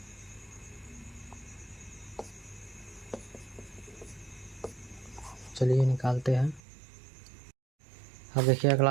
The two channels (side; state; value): left; drops out; at 6.6 s